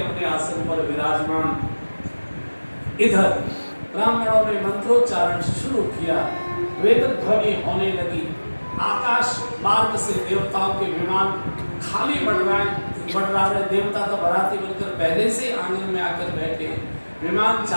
आसन पर विराजमान। इधर ब्राह्मणों ने मंत्रोच्चारण शुरू किया, वेद ध्वनि होने लगी, आकाश मार्ग से देवताओं के विमान खाली बढ़ रहे। देवता तो बाराती बनकर पहले से आंगन में आकर बैठे। विमान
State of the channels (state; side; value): inverted; both; correlation -1.00